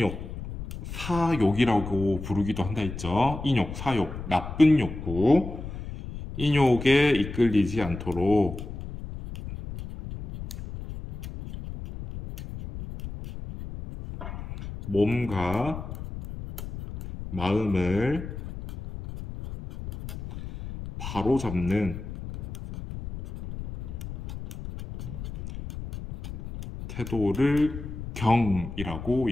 사욕이라고 부르기도 한다 했죠. 인욕, 사욕, 나쁜 욕구, 인욕에 이끌리지 않도록 몸과 마음을 바로잡는 태도를 경이라고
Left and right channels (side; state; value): left; noise; rumble, 9 dB below the sound